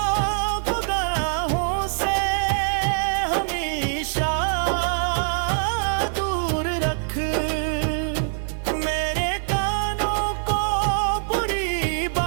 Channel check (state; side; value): silent; left; digital silence